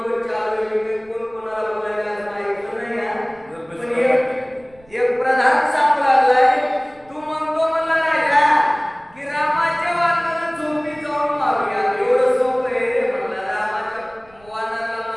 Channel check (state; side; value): noise; right; rumble, 29 dB below the sound